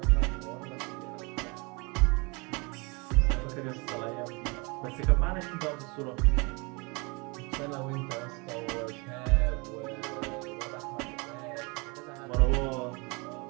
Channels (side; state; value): left; quieter; 29.0 dB